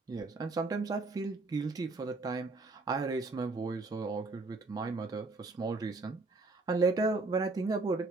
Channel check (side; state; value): left; quieter; 3.5 dB